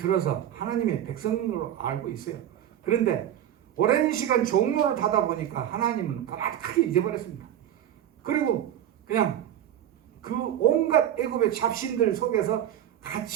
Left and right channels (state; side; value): quieter; left; 11.0 dB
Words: 하나님의 백성으로 알고 있어요. 그런데 오랜 시간 종로를 타다 보니까 하나님은 까맣게 잊어버렸습니다. 그리고 그냥 그 온갖 애굽의 잡신들 속에서